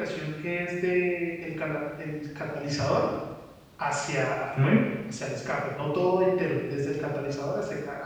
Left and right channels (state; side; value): identical; both; correlation 1.00